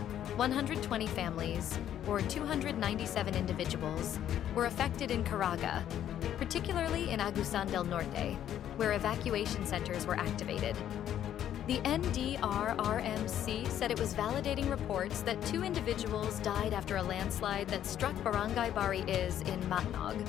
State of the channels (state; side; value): quieter; right; 10.8 dB